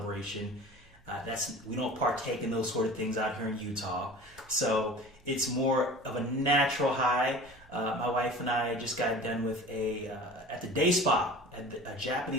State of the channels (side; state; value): both; normal; correlation 0.39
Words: We don't partake in those sort of things out here in Utah. So it's more of a natural high. My wife and I just got done with at the day spa, a